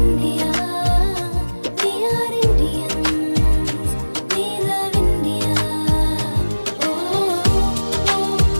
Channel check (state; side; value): inverted; both; correlation -1.00